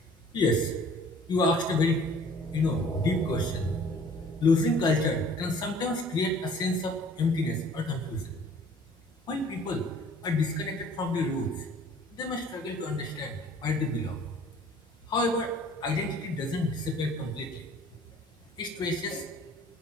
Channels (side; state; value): both; normal; correlation 0.52